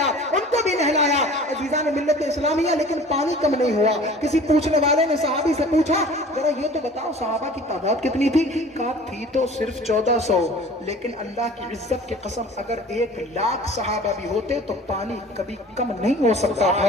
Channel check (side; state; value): both; normal; correlation 0.45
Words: ان کو بھی نہلایا. عزیزان ملت اسلامیہ، لیکن پانی کم نہیں ہوا. کسی پوچھنے والے نے صحابی سے پوچھا، ذرا یہ تو بتاؤ صحابہ کی تعداد کتنی تھی؟ کہا تھی تو صرف 1400، لیکن اللہ کی عزت کی قسم اگر 1,00,000 صحابہ بھی ہوتے تو پانی کبھی کم نہیں ہو سکتا